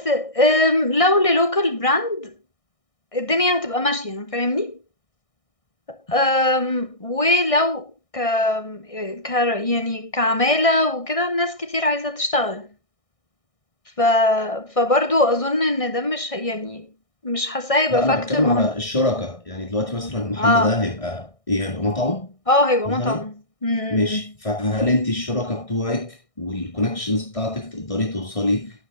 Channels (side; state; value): right; late; 1.6 ms